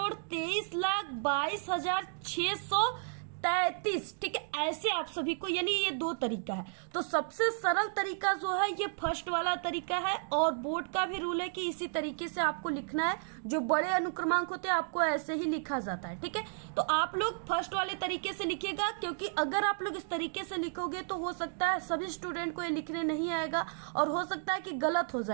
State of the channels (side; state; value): left; silent; digital silence